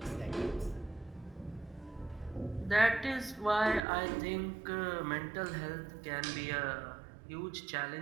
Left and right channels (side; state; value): left; drops out; at 3.8 s